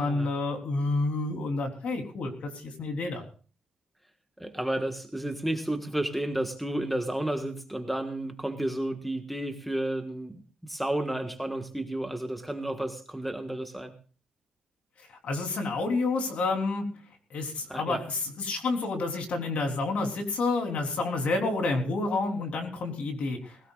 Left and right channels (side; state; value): both; normal; correlation 0.77